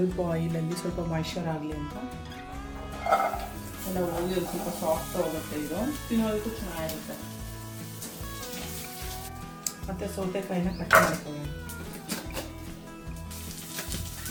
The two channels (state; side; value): identical; both; correlation 1.00